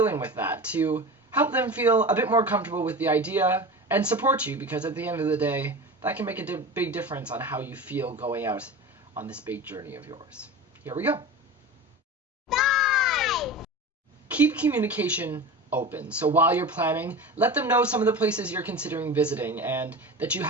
with that to help them feel a bit more comfortable with the idea and support you, because at the end of the day, that can make a big difference on how you feel going out on this big journey of yours. Here we go. 5! Keep communication open. So while you're planning, let them know some of the places you're considering visiting and that you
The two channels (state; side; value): normal; both; correlation 0.31